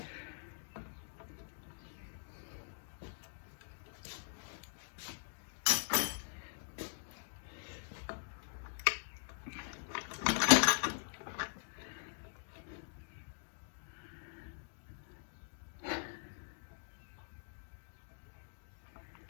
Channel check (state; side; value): silent; right; digital silence